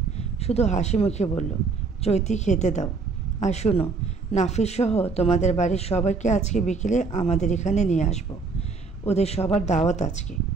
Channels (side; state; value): left; quieter; 4.4 dB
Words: শুধু হাসি মুখে বলল, চৈতি খেতে দাও। আর শুনো, নাফিস সহ তোমাদের বাড়ির সবাইকে আজকে বিকেলে আমাদের এখানে নিয়ে আসবো। ওদের সবার দাওয়াত আজকে।